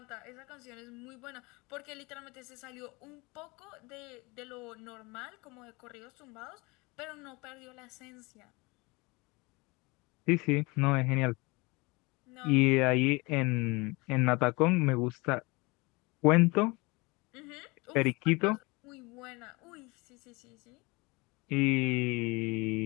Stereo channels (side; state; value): right; quieter; 25.5 dB